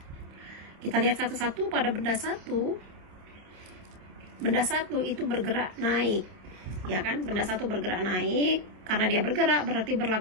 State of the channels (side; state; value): left; late; 27 ms